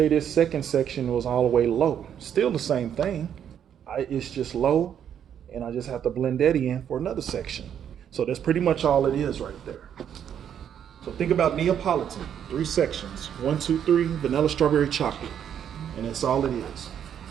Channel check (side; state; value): left; quieter; 9.1 dB